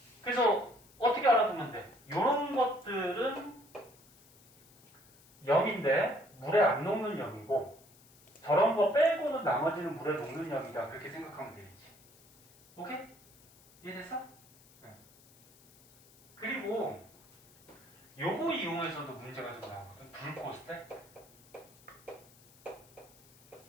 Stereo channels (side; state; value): left; noise; hiss, 26 dB below the sound